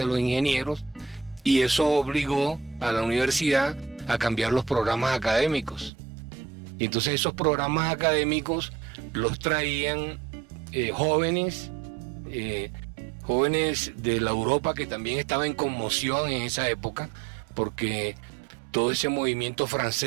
de los ingenieros, y eso obligó a la universidad a cambiar los programas académicos. Y entonces esos programas académicos los traían jóvenes de la Europa, que también estaba en conmoción en esa época, porque todo ese movimiento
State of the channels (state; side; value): drops out; left; at 5.9 s